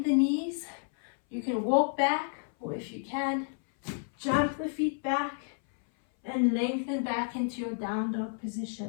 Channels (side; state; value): right; silent; 57 dB below the other